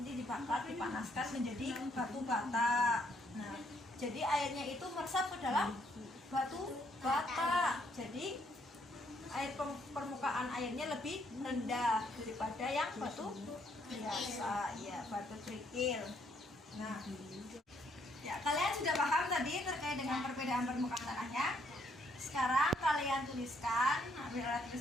dibakar, dipanaskan menjadi batu bata. Nah, jadi airnya itu meresap ke dalam batu bata. Jadi air permukaan airnya lebih rendah daripada yang batu biasa, ya, batu kerikil. Nah, ya, kalian sudah paham tadi terkait dengan perbedaan permukaan tanahnya. Sekarang kalian tuliskan, ambil alat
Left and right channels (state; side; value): normal; both; correlation 0.70